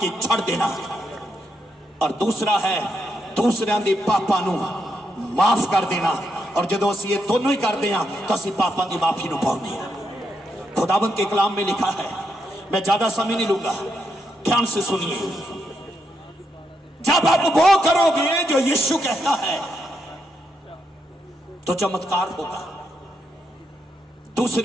के छड़ देना, और दूसरा है दूसरियां दे पापा नु माफ कर देना। और जो असं ये दोनों ही करते हैं तो असं पापों की माफी नूं पाउंदे हां। खुदावंद के कलाम में लिखा है, मैं ज्यादा समय नहीं लूंगा, ध्यान से सुनिए। जब आप वो करोगे जो यीशु कहता है तो चमत्कार होगा।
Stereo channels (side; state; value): both; normal; correlation 0.81